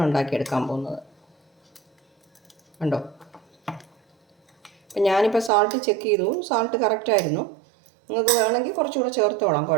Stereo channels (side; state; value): left; drops out; at 5.5 s